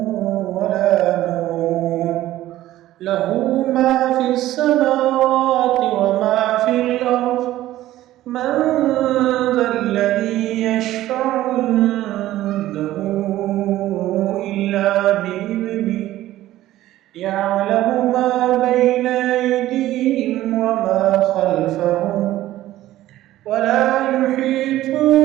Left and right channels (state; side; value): quieter; left; 14.8 dB